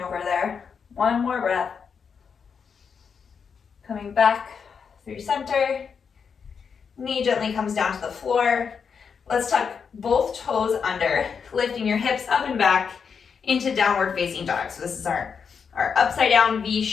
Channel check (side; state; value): right; quieter; 6.3 dB